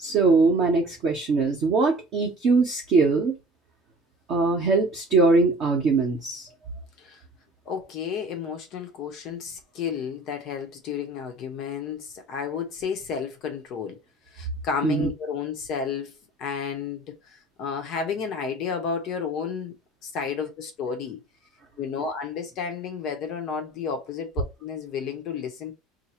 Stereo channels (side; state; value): both; normal; correlation 0.45